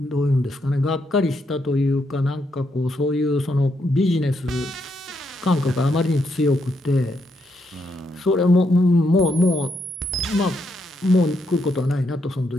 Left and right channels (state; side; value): normal; both; correlation 0.78